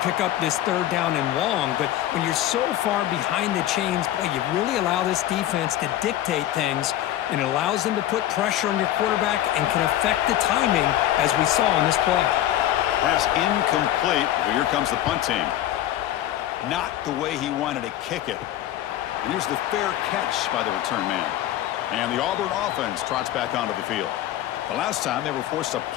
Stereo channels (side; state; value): right; quieter; 13.0 dB